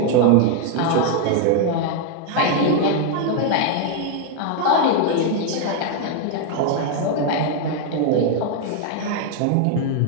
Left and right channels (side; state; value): both; different; correlation 0.00